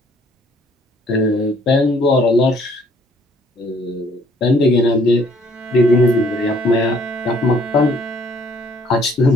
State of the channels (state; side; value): normal; both; correlation 0.62